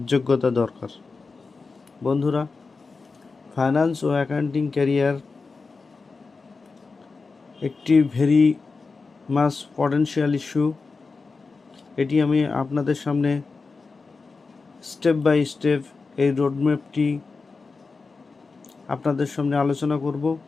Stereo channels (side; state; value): right; quieter; 4.3 dB